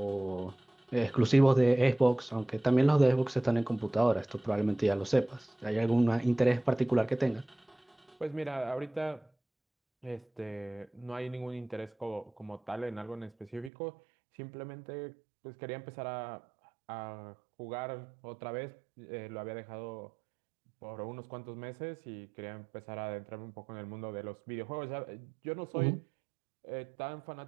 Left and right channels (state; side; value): drops out; left; at 13.7 s